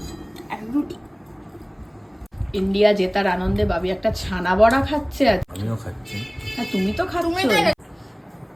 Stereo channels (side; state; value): both; identical; correlation 1.00